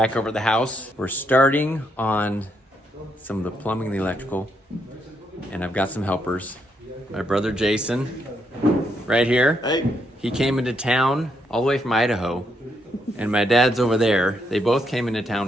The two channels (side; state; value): both; normal; correlation 0.77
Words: over at the house. We're starting on some of the plumbing and the electrical, and I've got some helpers. My brother Jason, right here. Hey. He came into town all the way from Idaho, and my dad's over there. They both came into town